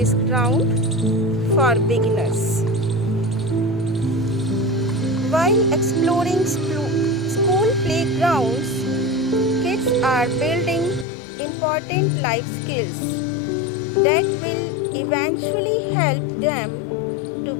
ground for beginners. While exploring school playgrounds, kids are building important life skills that will eventually help them to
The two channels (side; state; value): right; drops out; at 11.1 s